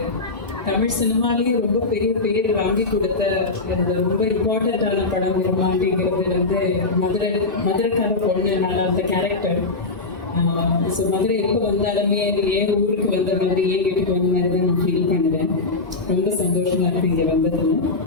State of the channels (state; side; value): quieter; right; 3.5 dB